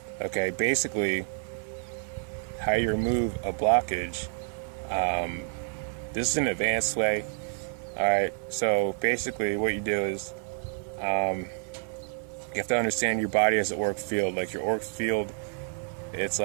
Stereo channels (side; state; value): left; silent; 59 dB below the other